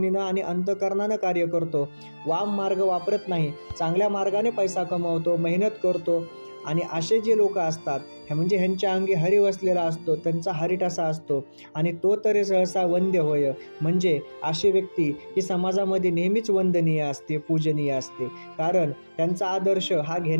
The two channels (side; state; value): both; inverted; correlation -1.00